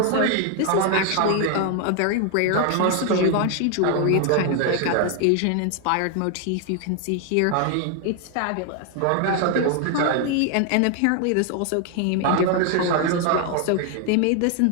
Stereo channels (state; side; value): different; both; correlation 0.00